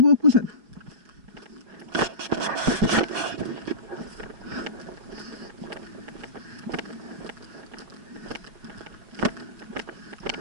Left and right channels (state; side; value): late; left; 5.4 ms